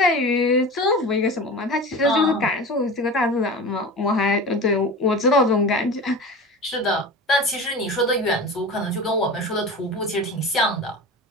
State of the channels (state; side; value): normal; both; correlation 0.32